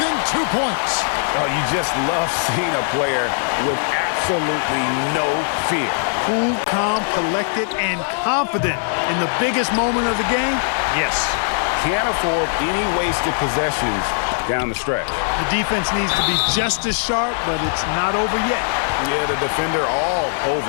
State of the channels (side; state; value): right; silent; digital silence